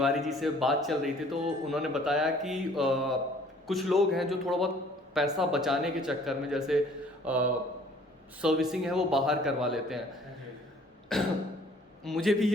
जी से बात चल रही थी, तो उन्होंने बताया कि कुछ लोग हैं जो थोड़ा बहुत पैसा बचाने के चक्कर में, जैसे सर्विसिंग है वो बाहर करवा लेते हैं। मुझे भी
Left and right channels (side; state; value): both; normal; correlation 0.56